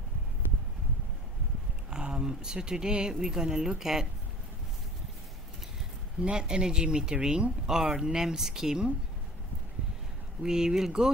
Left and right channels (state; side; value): normal; both; correlation 0.45